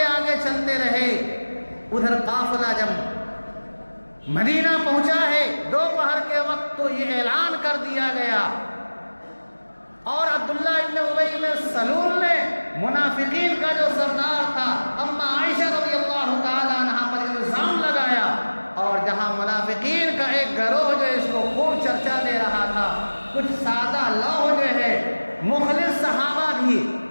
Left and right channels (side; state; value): both; inverted; correlation -1.00